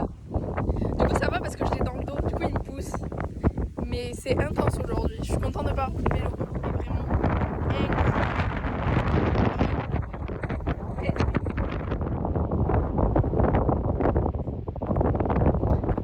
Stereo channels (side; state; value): both; identical; correlation 1.00